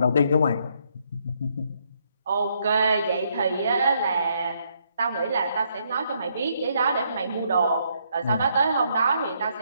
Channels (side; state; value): both; inverted; correlation -0.73